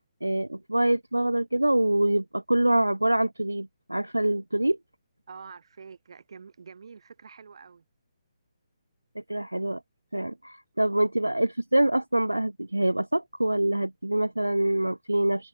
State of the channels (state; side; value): inverted; both; correlation -1.00